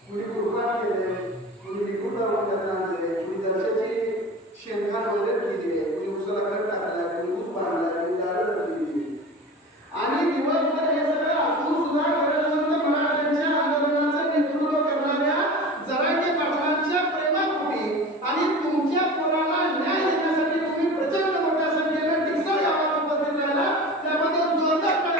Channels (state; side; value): normal; both; correlation 0.34